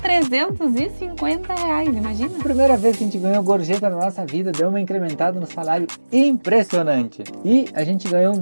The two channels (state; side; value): inverted; both; correlation -1.00